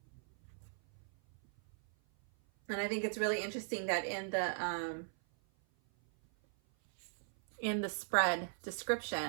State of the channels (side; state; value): left; silent; 52 dB below the other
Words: And I think it's really interesting that in the spread